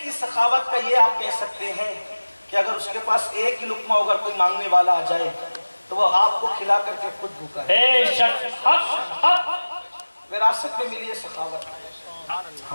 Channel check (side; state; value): both; inverted; correlation -1.00